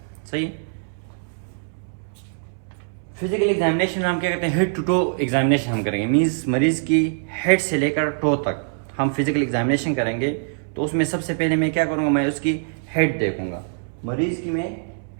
सही है। फिजिकल एग्जामिनेशन में हम क्या करते हैं, हेड टू टो एग्जामिनेशन हम करेंगे। मीन्स मरीज़ की हेड से लेकर टो तक हम फिजिकल एग्जामिनेशन करेंगे। तो उसमें सबसे पहले मैं क्या करूँगा, मैं उसकी हेड देखूँगा, मरीज़ की मैं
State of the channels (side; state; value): left; silent; 63 dB below the other